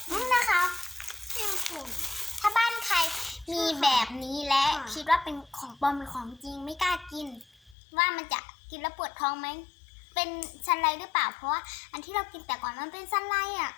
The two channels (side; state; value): right; drops out; at 7.8 s